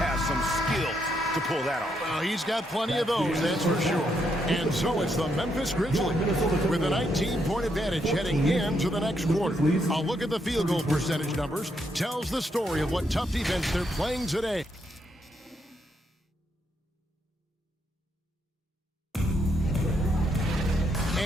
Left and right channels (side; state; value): both; normal; correlation 0.77